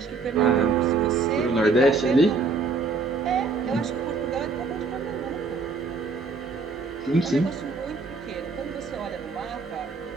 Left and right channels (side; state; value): left; quieter; 4.2 dB